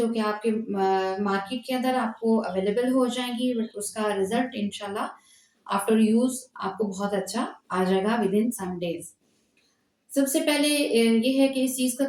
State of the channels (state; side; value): identical; both; correlation 1.00